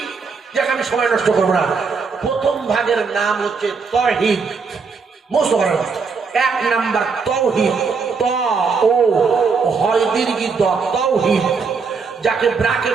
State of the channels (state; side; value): quieter; left; 5.1 dB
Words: যাকে আমি সময় নষ্ট করবো না। প্রথম ভাগের নাম হচ্ছে তাওহীদ। মুখস্থ করেন। 1 নাম্বার তাওহীদ, ত ও হয় দীর্ঘ দ, তাওহীদ, যাকে